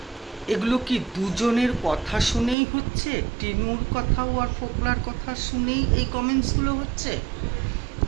এগুলো কি দুজনের কথা শুনেই হচ্ছে? টিনুর কথাও আর ফোকলার কথা শুনেই এই কমেন্টসগুলো হচ্ছে,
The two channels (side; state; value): left; drops out; at 2.6 s